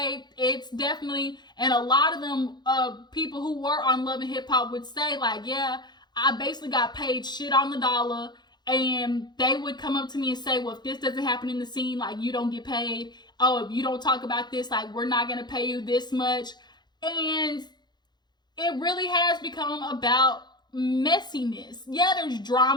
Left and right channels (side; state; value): right; late; 0.21 ms